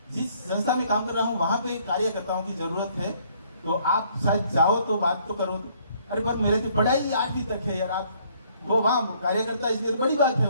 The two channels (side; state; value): both; inverted; correlation -0.64